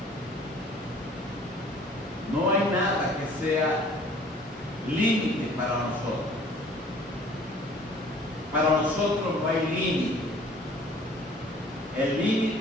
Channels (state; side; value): normal; both; correlation 0.52